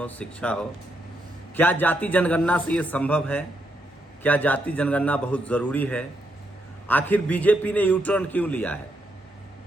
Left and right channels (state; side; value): normal; both; correlation 0.79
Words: शिक्षा हो। क्या जाति जनगणना से ये संभव है? क्या जाति जनगणना बहुत जरूरी है? आखिर बीजेपी ने यू टर्न क्यों लिया है?